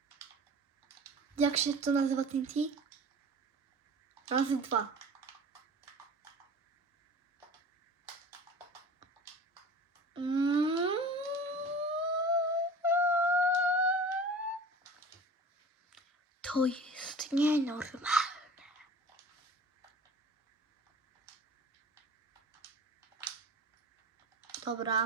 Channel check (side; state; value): both; normal; correlation 0.40